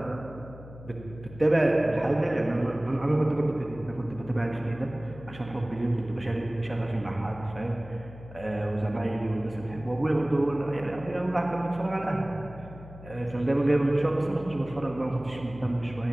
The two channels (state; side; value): noise; left; hum, 16 dB below the sound